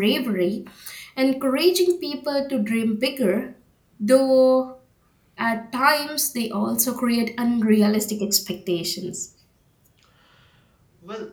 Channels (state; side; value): identical; both; correlation 1.00